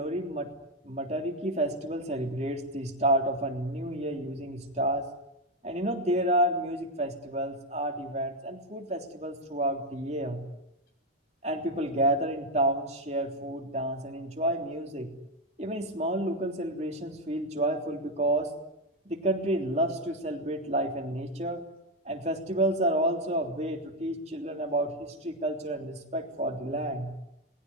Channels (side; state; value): both; normal; correlation 0.06